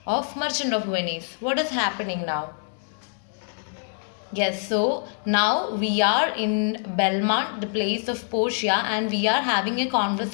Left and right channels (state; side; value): silent; right; digital silence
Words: of Merchant of Venice? What is happening now? Yes, so now we are in Belmont, the place of Portia, and we are having a